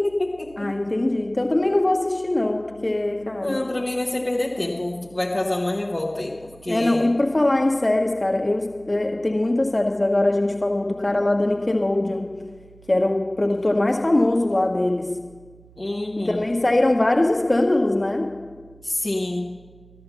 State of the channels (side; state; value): right; noise; hum, 25 dB below the sound